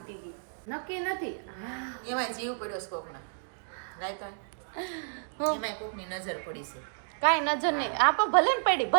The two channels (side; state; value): left; silent; digital silence